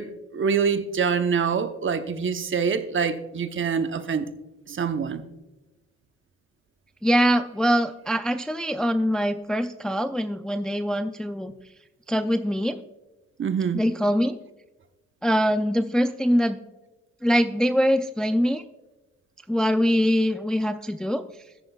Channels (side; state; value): both; normal; correlation 0.77